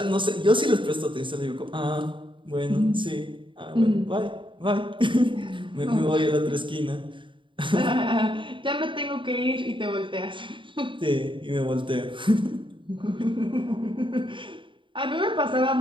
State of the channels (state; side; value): late; left; 0.24 ms